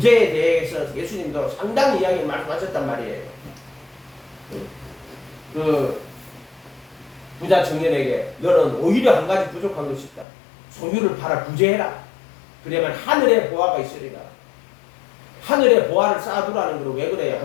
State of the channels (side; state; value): right; drops out; at 10.2 s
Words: 대해서 예수님도 상당히 이야기를 말씀하셨단 말이에요. 그 부자 청년에게 너는 오히려 한 가지 부족한 것이 있다. 소유를 팔아 구제해라. 그러면 하늘에 보화가 있으리라. 하늘에 보화를 쌓아두라는 거로 왜 그래요?